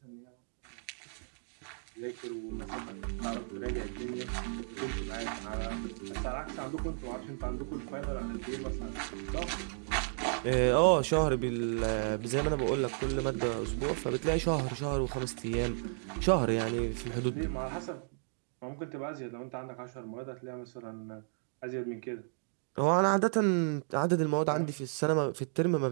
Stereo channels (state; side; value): silent; left; digital silence